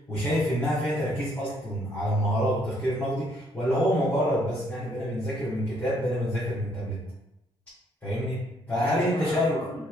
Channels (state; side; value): normal; both; correlation 0.68